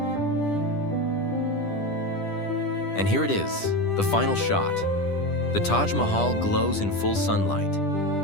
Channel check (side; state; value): right; late; 10 ms